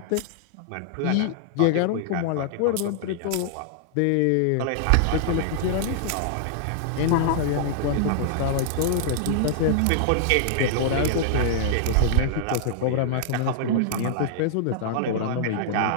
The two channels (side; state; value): both; different; correlation -0.01